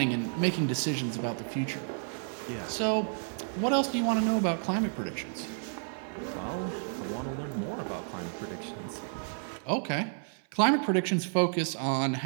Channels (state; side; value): silent; left; 56 dB below the other